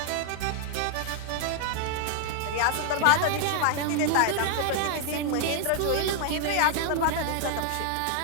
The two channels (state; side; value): different; both; correlation 0.00